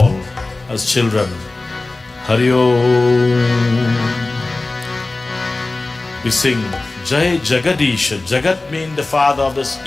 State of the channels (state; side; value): quieter; right; 3.2 dB